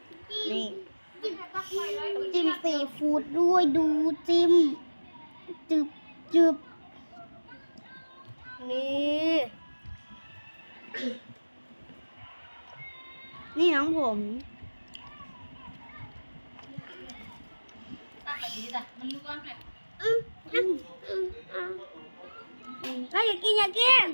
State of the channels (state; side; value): inverted; both; correlation -1.00